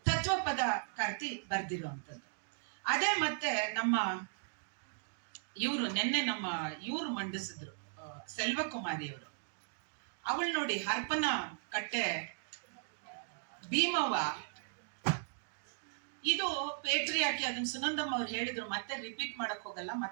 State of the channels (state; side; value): silent; left; digital silence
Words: ತತ್ವಪದಕಾರ್ತಿ ಬರೆದಿರುವಂಥದ್ದು. ಅದೇ ಮತ್ತೆ ನಮ್ಮ ಇವರು ಮಂಡಿಸಿದ್ರು, ಸೆಲ್ವಕುಮಾರಿಯವರು. ಅವಳು ನೋಡಿ, ಹರಪನ ಕಟ್ಟೆ ಭೀಮವ್ವ, ಇದು ಪೇಟ್ರಿಯಾಕಿ, ಅದನ್ನ ಸುನಂದಮ್ಮ ಅವ್ರು ಹೇಳಿದ್ರು, ಮತ್ತೆ ರಿಪೀಟ್ ಮಾಡಕ್ ಹೋಗಲ್ಲ,